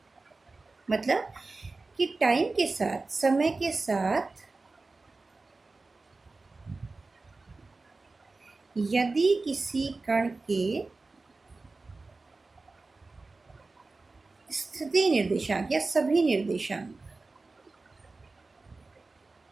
मतलब कि टाइम के साथ, समय के साथ यदि किसी कण के स्थिति निर्देशांक या सभी निर्देशांक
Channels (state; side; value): quieter; left; 3.6 dB